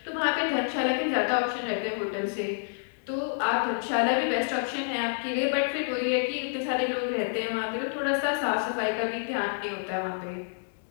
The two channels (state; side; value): silent; right; digital silence